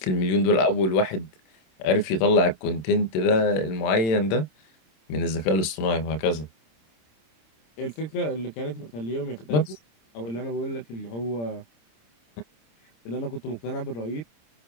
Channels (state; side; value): late; right; 27 ms